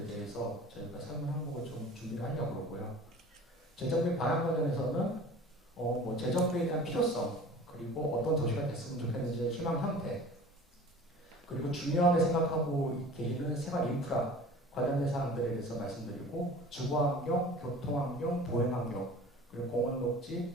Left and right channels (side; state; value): both; normal; correlation 0.42